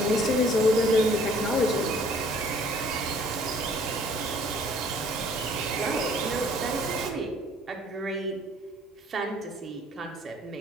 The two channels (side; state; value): both; normal; correlation 0.57